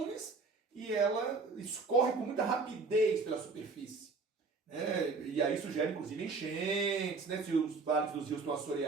e ela escorre com muita rapidez pela superfície. Né? E aí isso gera, inclusive, enchentes, né? Se os vales dos rios estão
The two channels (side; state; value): left; quieter; 4.2 dB